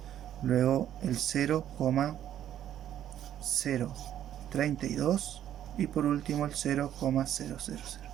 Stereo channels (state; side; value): quieter; left; 10.9 dB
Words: Luego el 0,032 y por último el 0,000.